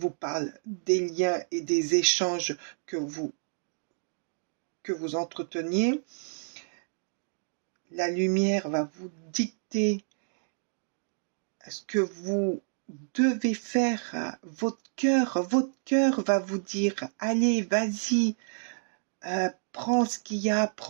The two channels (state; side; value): silent; left; digital silence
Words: parle des liens et des échanges que vous entreteniez. La lumière va vous dicter ce que vous devez faire. Votre cœur va vous dire, allez, vas-y, prends ce qu'il y a à